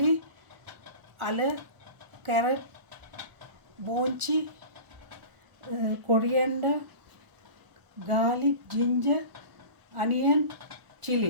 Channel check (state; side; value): late; left; 1.0 ms